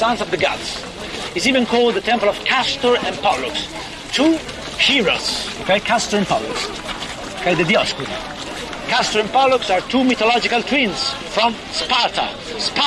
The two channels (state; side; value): identical; both; correlation 1.00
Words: of the gods. It's even called the Temple of Castor and Pollux, 2 heroes. Okay, Castor and Pollux. Okay, the Dioscuri. Castor and Pollux are 2 mythological twins from Sparta,